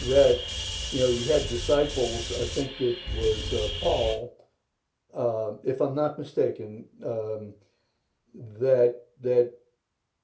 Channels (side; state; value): both; identical; correlation 1.00